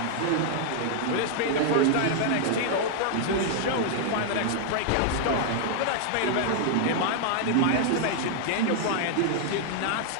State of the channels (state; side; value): different; both; correlation -0.01